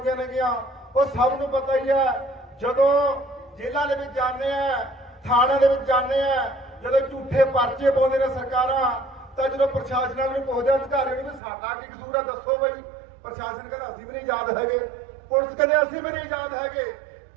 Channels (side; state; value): left; drops out; at 11.4 s